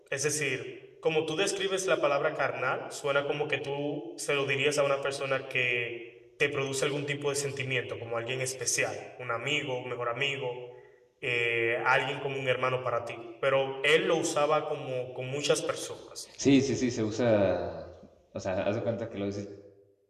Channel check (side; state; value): both; identical; correlation 1.00